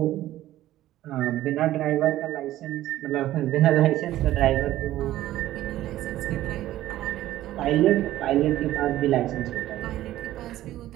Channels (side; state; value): left; quieter; 14.3 dB